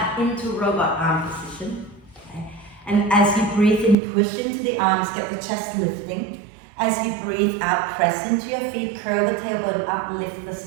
into robot arm position. Okay. And as you breathe in, push into the arms, get the chest lifting. As you breathe out, press into your feet, curl the tailbone up, lift the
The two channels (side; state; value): left; drops out; at 4.0 s